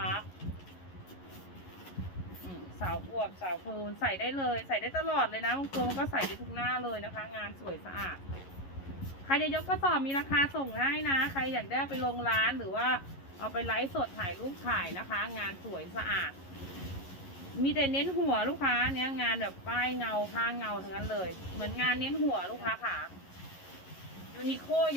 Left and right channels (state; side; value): late; right; 11 ms